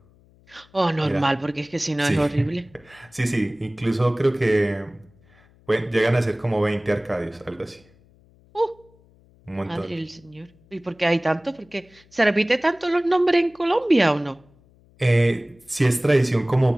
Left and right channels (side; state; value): left; noise; hum, 30 dB below the sound